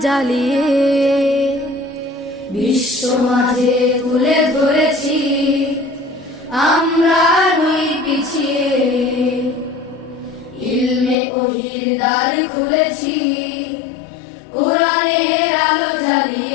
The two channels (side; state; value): right; drops out; at 11.2 s